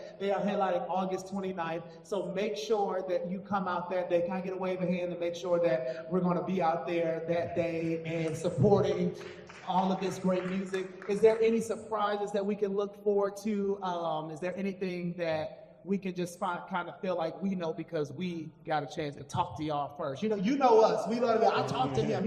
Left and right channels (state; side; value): identical; both; correlation 1.00